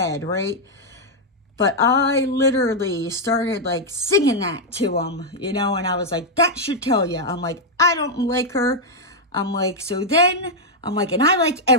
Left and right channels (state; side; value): normal; both; correlation -0.02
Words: right? But I literally started like singing that to him, you know, and I was like, that should tell you. I'm like, I don't like her. I'm like, so then, I'm like, and I like